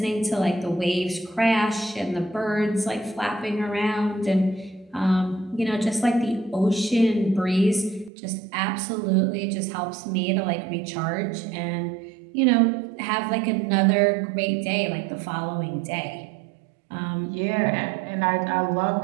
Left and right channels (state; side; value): drops out; left; at 8.1 s